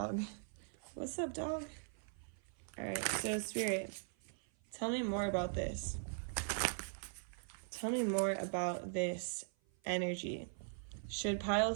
What's up, dog? All right, so Spirit, tell me more about this. Tell me more about this energy. Should pile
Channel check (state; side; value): silent; left; 51 dB below the other